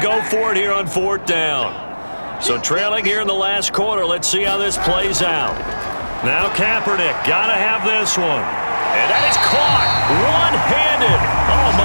go for it here on 4th down. So trailing here in the last quarter, let's see how this plays out. Now Kaepernick, got to have this one. And that is caught one-handed. Oh,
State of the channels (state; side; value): inverted; both; correlation -1.00